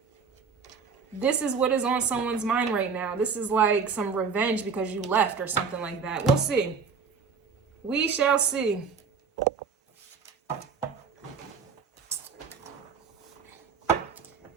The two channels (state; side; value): quieter; left; 5.6 dB